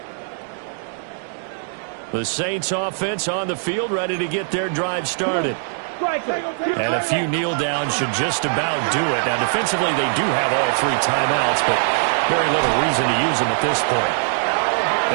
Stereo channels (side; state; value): left; silent; 65 dB below the other